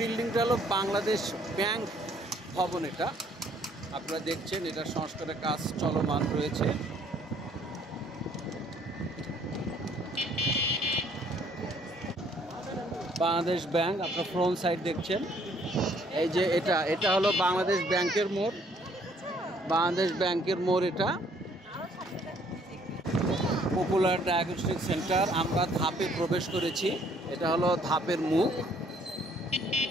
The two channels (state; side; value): normal; both; correlation 0.63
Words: হলো বাংলাদেশ ব্যাংক ভবন। এটা আপনারা দেখছেন, এটা সংস্কারের কাজ চলমান রয়েছে। বাংলাদেশ ব্যাংক আপনার ফ্রন্ট সাইড দেখছেন, এই যে এটা হলো বাংলাদেশ ব্যাংকের মোড়। বাংলাদেশ ব্যাংকের মোড় এটা। পপুলার ডায়াগনস্টিক সেন্টার, আমরা ধাপে প্রবেশ করেছি। এটা হলো ধাপের মুখ।